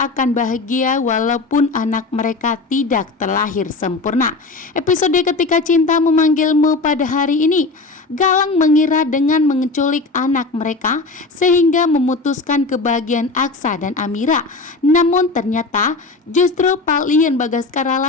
bahagia walaupun anak mereka tidak terlahir sempurna. Episode Ketika Cinta Memanggilmu pada hari ini, Galang mengira dengan menculik anak mereka sehingga memutuskan kebahagiaan Aksa dan Amira. Namun ternyata justru Palian Bagaskara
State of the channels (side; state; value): right; quieter; 3.6 dB